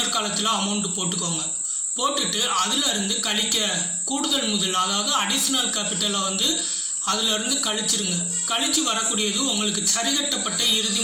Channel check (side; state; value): both; identical; correlation 1.00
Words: காலத்தில் அமௌண்ட் போட்டுக்கோங்க. போட்டுட்டு அதுல இருந்து கழிக்க கூடுதல் முதல், அதாவது அடிஷனல் கேபிட்டலை வந்து அதுல இருந்து கழிச்சிருங்க. கழிச்சு வரக்கூடியது உங்களுக்கு சரிகட்டப்பட்ட இறுதி